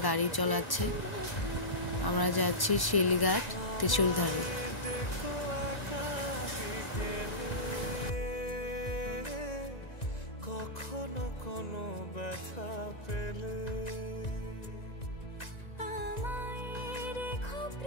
গাড়ি চালাচ্ছে। আমরা যাচ্ছি শিলঘাট ত্রিশূলধারী। কখনো কোনো ব্যথা পেলে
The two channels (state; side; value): late; right; 1.9 ms